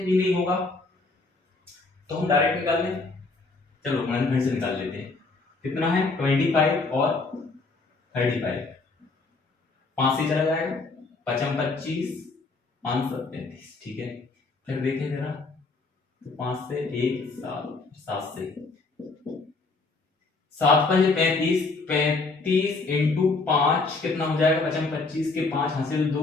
भी नहीं होगा, तो हम डायरेक्ट निकाल लें। चलो गुणनखंड से निकाल लेते हैं। कितना है, 25 और 35, 5 से चला जाएगा, 5 25 5 7 35, ठीक है। फिर देखें जरा, तो 5 से 1 7 7 से 7 5 35 35 इंटू 5 कितना हो जाएगा, 5 25 के 5 हासिल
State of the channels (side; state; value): right; quieter; 3.8 dB